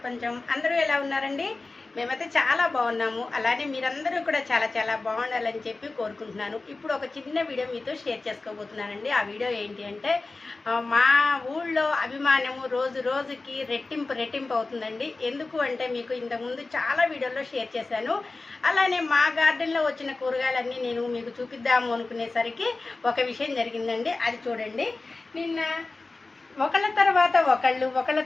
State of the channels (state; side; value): quieter; right; 3.5 dB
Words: అందరూ ఎలా ఉన్నారండి? మేమైతే చాలా బాగున్నాము. అలానే మీరందరూ కూడా చాలా చాలా బాగుండాలని చెప్పి కోరుకుంటున్నాను. ఇప్పుడు ఒక చిన్న వీడియో మీతో షేర్ చేసుకోబోతున్నానండి. ఆ వీడియో ఏంటి అంటే, మా ఊళ్ళో అభిమానము రోజు రోజుకి రెట్టింపు అవుతుందండి. ఎందుకు అంటే, మీకు ఇంతకుముందు చాలా వీడియోల్లో షేర్ చేశాను. అలానే మా గార్డెన్లో వచ్చిన కూరగాయలన్నీ నేను మీకు చూపిద్దాము అనుకునేసరికి ఒక విషయం జరిగిందండి. అది చూడండి. నిన్న ఒకళ్ళ తర్వాత